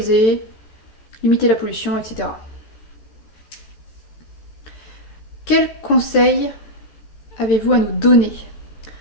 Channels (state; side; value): late; right; 14 ms